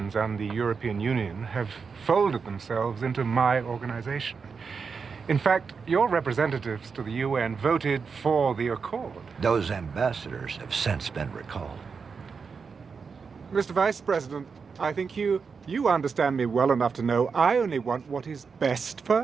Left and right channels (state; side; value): quieter; left; 5.4 dB